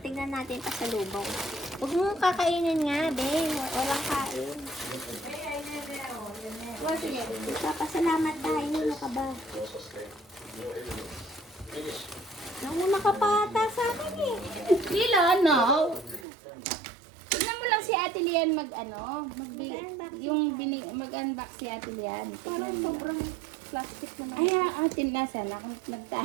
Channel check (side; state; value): left; drops out; at 16.2 s